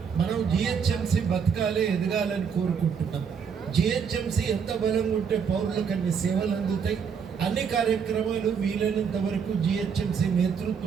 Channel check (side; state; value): left; quieter; 6.6 dB